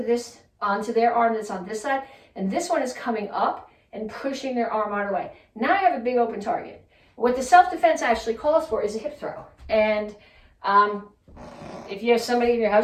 their arm that's on this side, and this one is coming up and pushing their arm out of the way. Now I have a big open target. What the self-defense actually calls for is a hip throw. And if you have somebody in your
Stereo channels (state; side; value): identical; both; correlation 1.00